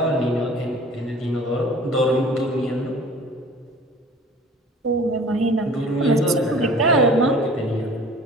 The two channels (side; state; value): both; normal; correlation 0.47